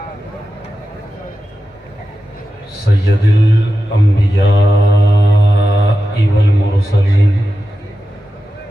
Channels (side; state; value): both; normal; correlation 0.92